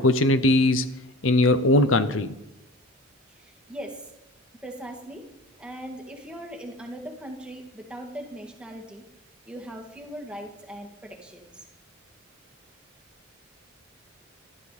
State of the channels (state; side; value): normal; both; correlation 0.39